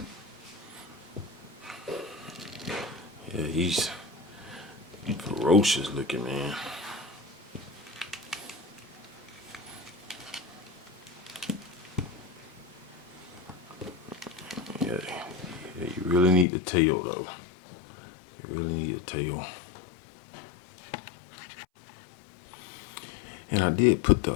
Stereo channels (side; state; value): right; drops out; at 16.4 s